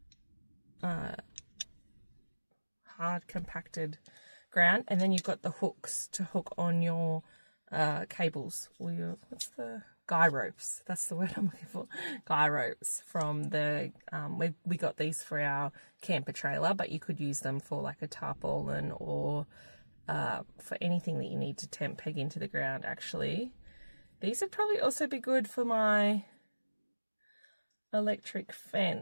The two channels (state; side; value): inverted; both; correlation -1.00